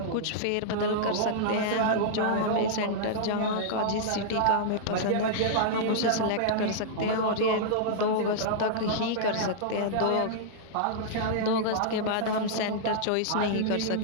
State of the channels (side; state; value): both; different; correlation -0.02